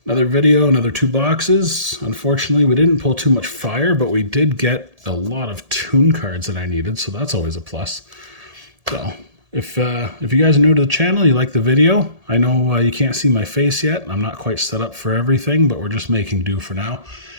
Another video, another 2 boxes. Unfortunately, we didn't pull too much fire, but we did get a lot of toon cards that I needed, so that's always a plus. So, if you guys are new to the channel, you like the video, I know you can't see my face yet. I'm not quite set up for everything, but we're just making do for now.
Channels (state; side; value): late; left; 1.7 ms